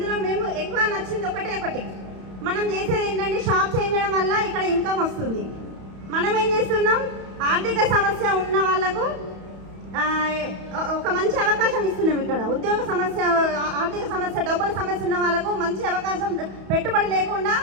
మేము ఎక్కువ నచ్చింది ఒకటి, మనం చేసేది ఏంటంటే షాప్ చేంజ్ చేయడం వల్ల ఇక్కడ ఇన్కమ్ వస్తుంది. మనం ఏం చేస్తున్నాం, ఆర్థిక సమస్య ఉన్న వాళ్ళకు ఒక మంచి అవకాశం ఇస్తున్నాం. ఇక్కడ ఉద్యోగ సమస్య, ఆర్థిక సమస్య, డబ్బుల సమస్య ఉన్న వాళ్ళకు మంచి అవకాశం, పెట్టుబడి లేకుండా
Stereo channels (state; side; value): late; left; 31 ms